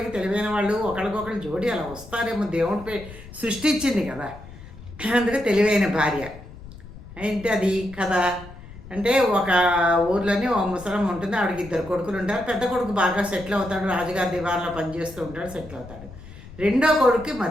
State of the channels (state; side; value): noise; left; rumble, 16 dB below the sound